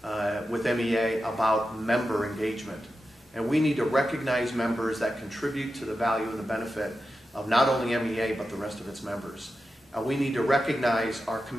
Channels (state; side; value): normal; both; correlation 0.91